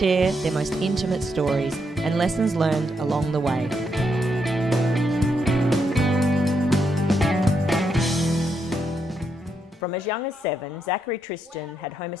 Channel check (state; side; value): normal; both; correlation 0.80